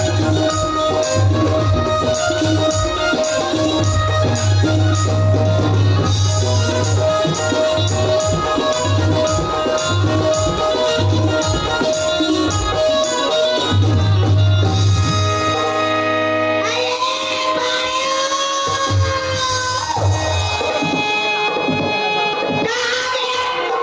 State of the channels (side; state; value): both; identical; correlation 1.00